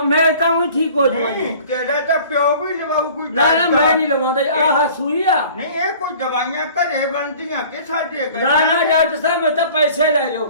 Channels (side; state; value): both; inverted; correlation -0.48